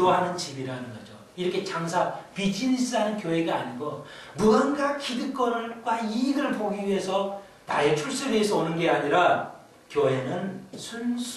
집이라는 거죠. 이렇게 비즈니스하는 교회가 아니고 무언가 기득권과 이익을 보기 위해서 나의 출세를 위해서 오는 게 아니라 교회는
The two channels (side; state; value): both; identical; correlation 1.00